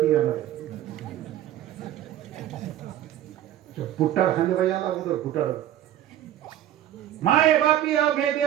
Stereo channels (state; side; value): quieter; left; 12.2 dB